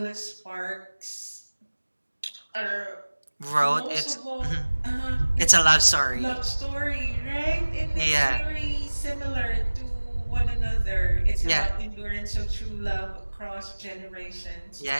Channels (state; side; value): inverted; both; correlation -1.00